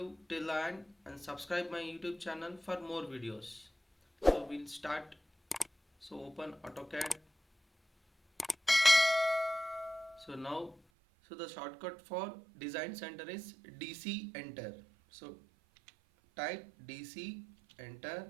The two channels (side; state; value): left; drops out; at 10.8 s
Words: till the end and subscribe my YouTube channel for more videos. So we'll start. So open AutoCAD. So now, the shortcut for design center is DC enter. So type DC